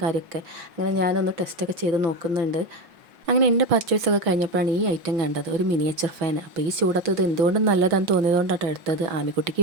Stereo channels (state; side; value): late; left; 5.7 ms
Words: കാര്യമൊക്കെ. അങ്ങനെ ഞാനൊന്ന് ടെസ്റ്റൊക്കെ ചെയ്ത് നോക്കുന്നുണ്ട്. അങ്ങനെ എൻ്റെ പർച്ചേസൊക്കെ കഴിഞ്ഞപ്പോഴാണ് ഈ ഐറ്റം കണ്ടത്, ഒരു മിനിയേച്ചർ ഫാൻ. അപ്പോൾ ഈ ചൂടത്ത് ഇത് എന്തുകൊണ്ടും നല്ലതാണെന്ന് തോന്നിയതുകൊണ്ടാണ് എടുത്തത്. ആമിക്കുട്ടിക്ക്